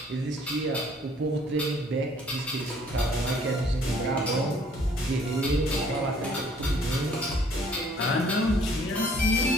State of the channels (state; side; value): normal; both; correlation 0.59